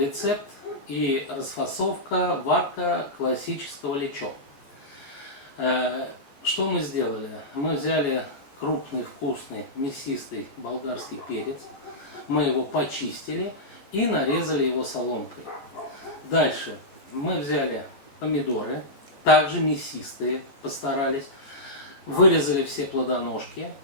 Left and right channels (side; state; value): right; late; 14 ms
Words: и расфасовка, варка классического лечо. Что мы сделали? Мы взяли крупный, вкусный, мясистый болгарский перец, мы его почистили и нарезали его соломкой. Дальше мы взяли помидоры, также мясистые, постарались, вырезали все плодоножки